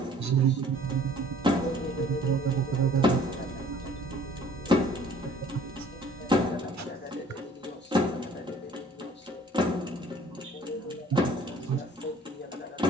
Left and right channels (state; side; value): normal; both; correlation 0.54